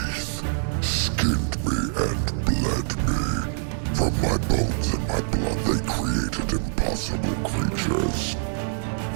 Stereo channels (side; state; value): left; silent; digital silence